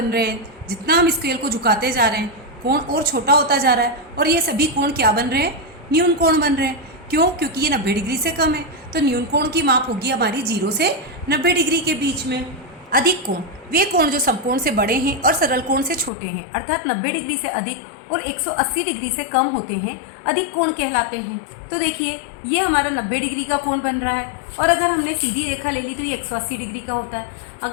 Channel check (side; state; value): right; drops out; at 16.1 s